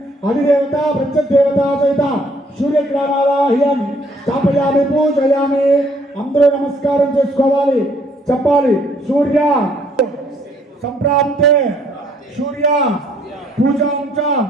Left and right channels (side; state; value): both; normal; correlation 0.64